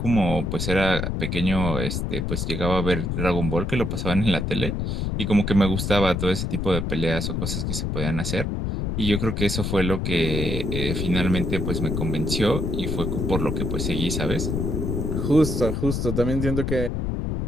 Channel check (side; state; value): left; noise; rumble, 1 dB below the sound